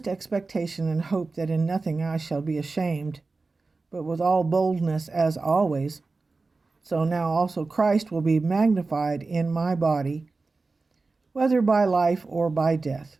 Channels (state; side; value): quieter; left; 3.8 dB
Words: expectation and hope that in nothing I shall be ashamed, but with all boldness as always, so now also Christ will be magnified in my body, whether by life or by death.